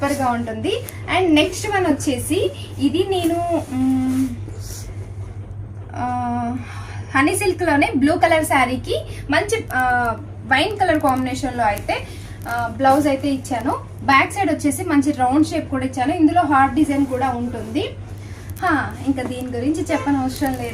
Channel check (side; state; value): both; identical; correlation 1.00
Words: ఉంటుంది. అండ్ నెక్స్ట్ వన్ వచ్చేసి ఇది నేను హనీ సిల్క్లోనే బ్లూ కలర్ శారీకి మంచి వైన్ కలర్ కాంబినేషన్లో అయితే బ్లౌజ్ అయితే ఇచ్చాను. బ్యాక్ సైడ్ వచ్చేసి మంచి రౌండ్ షేప్ కూడా ఇచ్చాను. ఇందులో హార్ట్ డిజైన్ కూడా ఉంటుంది. ఇంకా దీని గురించి చెప్పనవసరం